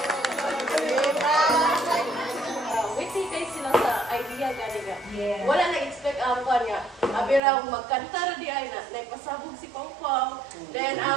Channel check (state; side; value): drops out; left; at 7.4 s